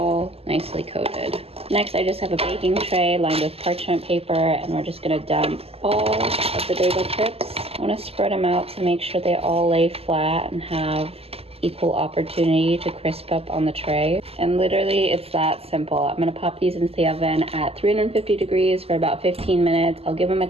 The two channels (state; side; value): late; left; 0.29 ms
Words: nicely coated. Next, I just have a baking tray lined with parchment paper, and we're just gonna dump all of the bagel chips. I want to spread them out to make sure they all lay flat and have equal opportunity to crisp up on the tray. And literally it's that simple. I'm gonna pop these into the oven at 350 degrees for about 15 minutes. I'll give them a